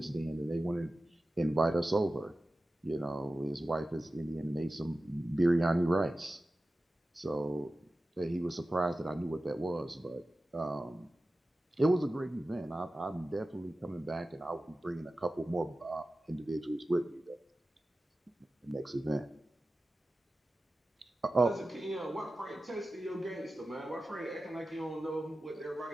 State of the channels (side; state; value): both; normal; correlation 0.95